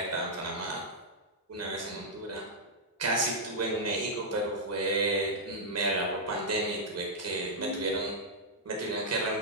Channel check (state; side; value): normal; both; correlation -0.08